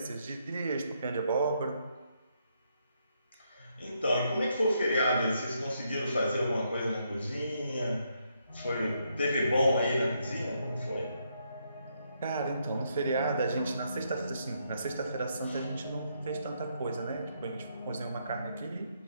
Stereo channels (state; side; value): inverted; both; correlation -0.76